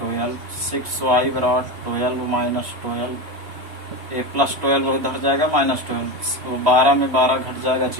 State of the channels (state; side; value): late; left; 3.0 ms